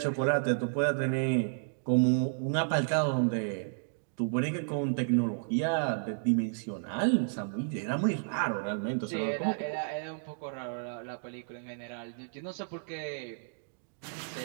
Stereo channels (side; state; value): left; silent; digital silence